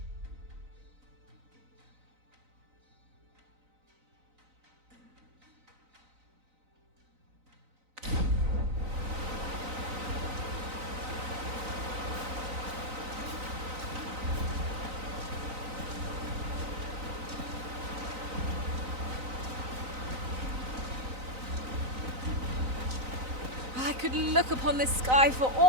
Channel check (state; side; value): late; left; 3.9 ms